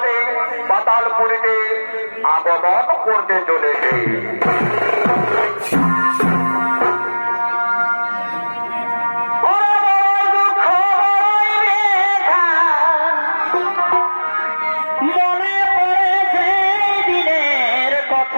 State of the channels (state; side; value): inverted; both; correlation -1.00